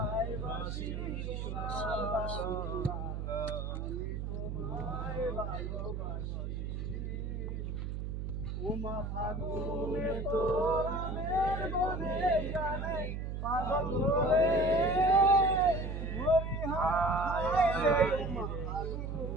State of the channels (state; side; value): noise; right; hum, 4 dB below the sound